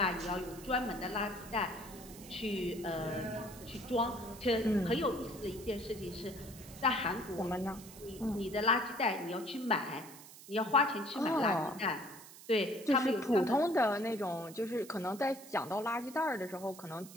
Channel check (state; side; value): noise; right; hiss, 17 dB below the sound